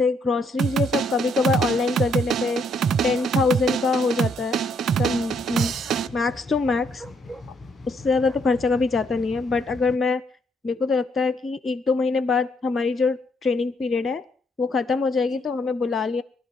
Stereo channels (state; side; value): normal; both; correlation 0.72